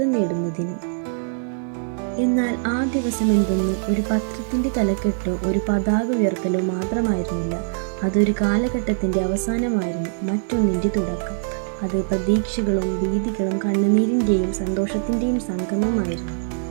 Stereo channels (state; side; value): silent; left; 64 dB below the other